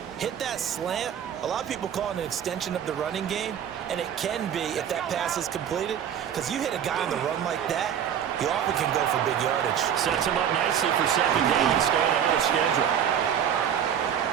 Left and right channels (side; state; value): left; quieter; 9.0 dB